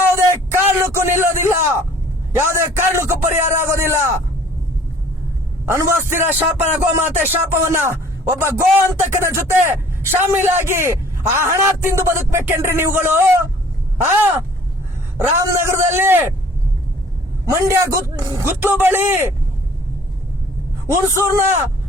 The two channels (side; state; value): both; normal; correlation 0.53